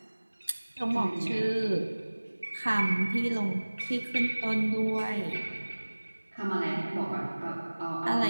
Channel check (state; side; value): inverted; both; correlation -1.00